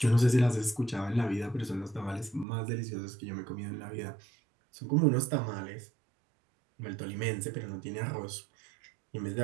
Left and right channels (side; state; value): left; drops out; at 2.5 s